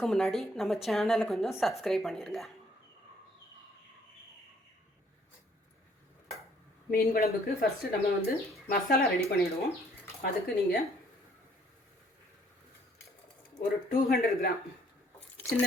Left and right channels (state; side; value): normal; both; correlation 0.63